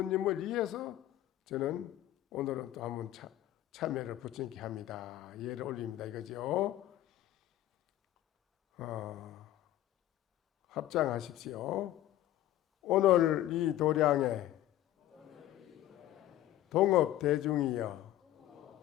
위해서 저는 오늘은 또 한번 참여를 부처님께 합니다. 예를 올립니다. 이거죠. 합장하십시오. 오늘 이 도량에 동업 대중이여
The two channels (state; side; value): quieter; right; 13.7 dB